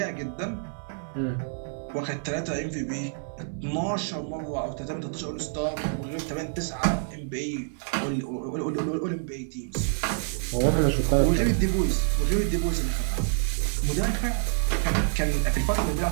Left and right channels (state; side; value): silent; left; digital silence